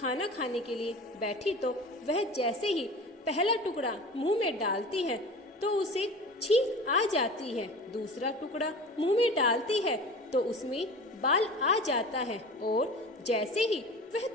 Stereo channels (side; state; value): both; normal; correlation 0.36